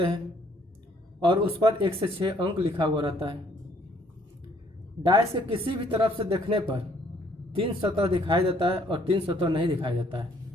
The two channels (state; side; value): normal; both; correlation 0.64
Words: हैं और उस पर 1 से 6 अंक लिखा हुआ रहता है। डाइस के किसी भी तरफ से देखने पर 3 सतह दिखाई देता है और 3 सतह नहीं दिखाई देता